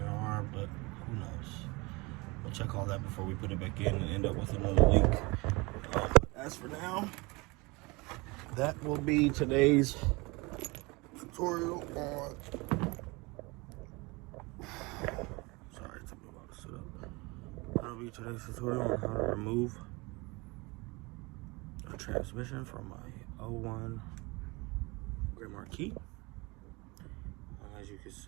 are, but who knows. We'll check all that before we put it back in and end up with another leak. But as for now, that will be today's tutorial on. Sorry, it took me a while to sit up. That'll be today's tutorial on how to remove a transmission from my 01 Grand Marquis. As you can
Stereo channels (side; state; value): left; quieter; 25.4 dB